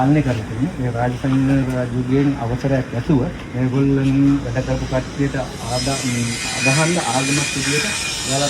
කරලා තියෙන්නේ. මේ රාජසිංහ රජුගෙන් අවසරයක් ඇසුව මේගොල්ලන් වැඩ කරපු කට්ටියට අදහන්න ආගමක් විදියට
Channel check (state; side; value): identical; both; correlation 1.00